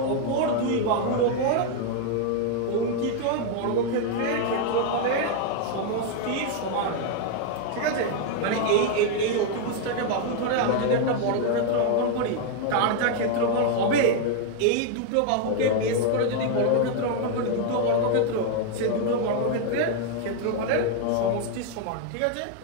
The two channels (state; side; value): different; both; correlation 0.00